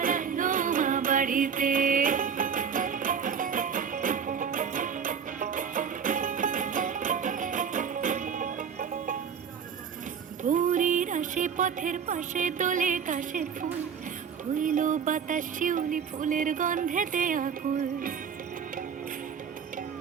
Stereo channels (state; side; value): quieter; left; 7.1 dB